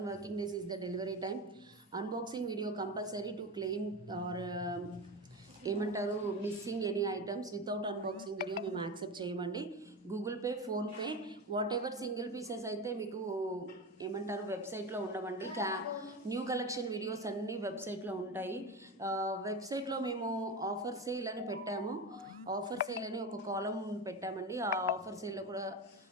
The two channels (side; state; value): both; normal; correlation 0.22